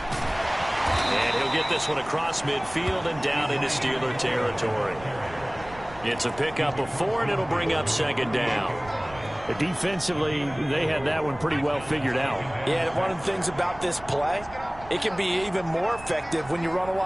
And he'll get this one across midfield and down into Steeler territory. It's a pickup of 4, and it'll bring up second down. Defensively, they had that one pretty well figured out. Yeah, and one of the things about this play, it can be even more effective when you run a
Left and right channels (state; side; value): noise; right; rumble, 18 dB below the sound